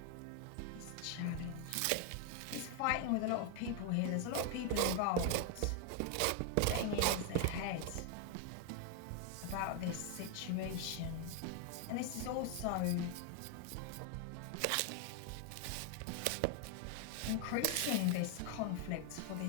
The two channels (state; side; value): different; both; correlation 0.01